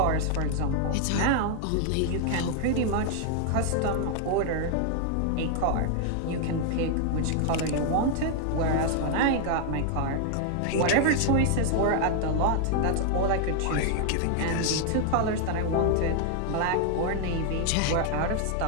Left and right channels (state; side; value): different; both; correlation 0.00